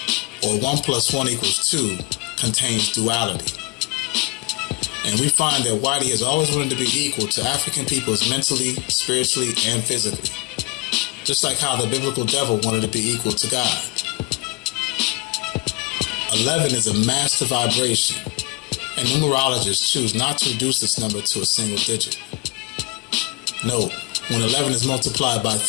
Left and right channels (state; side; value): quieter; right; 24.4 dB